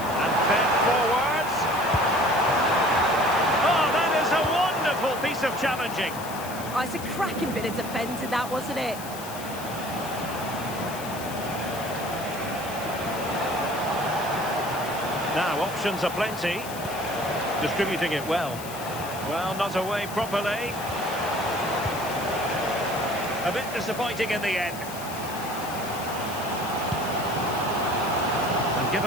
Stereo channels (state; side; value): noise; left; hiss, 13 dB below the sound